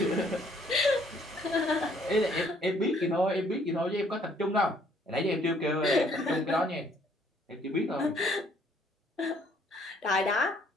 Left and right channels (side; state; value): both; normal; correlation 0.63